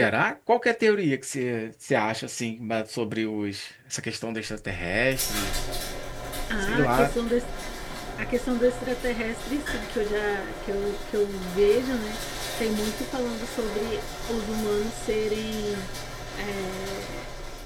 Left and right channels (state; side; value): identical; both; correlation 1.00